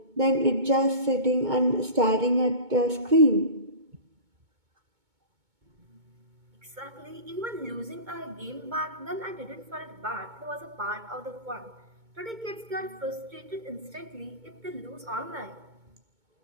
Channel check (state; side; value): late; left; 2.2 ms